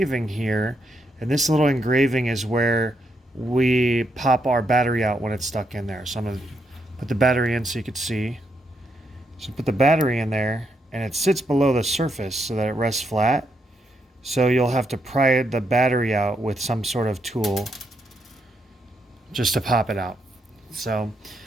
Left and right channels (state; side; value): normal; both; correlation 0.79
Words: here. And this little engraving is where we pop our battery out when it's stuck in there. So I'm going to put the battery in so you can see. So put the battery in there, and it sits below the surface so that it rests flat. So you'll have to pry the battery out with some sort of tool just to pop it out. So